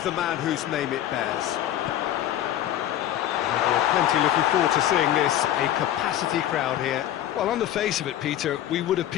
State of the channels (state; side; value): quieter; right; 12.2 dB